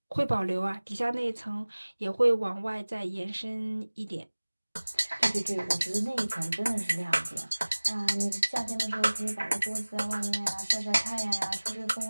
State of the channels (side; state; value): both; inverted; correlation -1.00